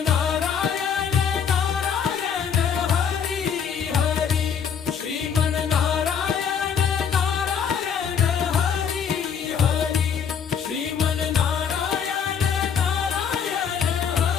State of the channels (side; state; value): right; quieter; 7.2 dB